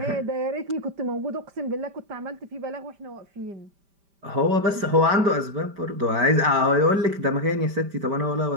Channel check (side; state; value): left; late; 5.1 ms